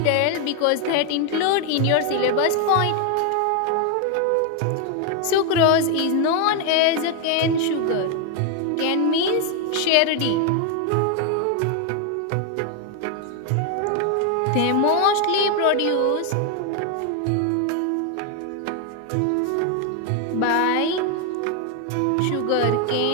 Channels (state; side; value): different; both; correlation 0.01